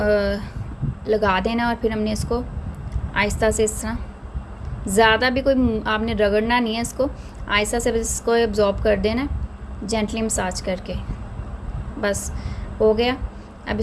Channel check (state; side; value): identical; both; correlation 1.00